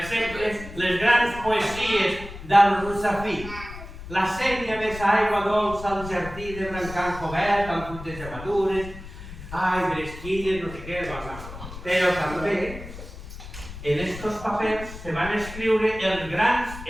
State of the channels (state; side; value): noise; left; rumble, 13 dB below the sound